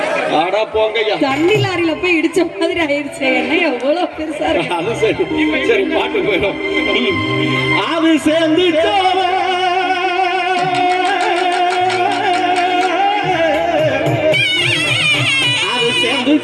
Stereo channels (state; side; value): identical; both; correlation 1.00